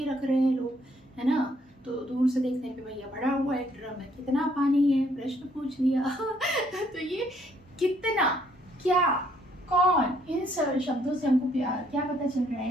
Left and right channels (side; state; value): both; normal; correlation 0.67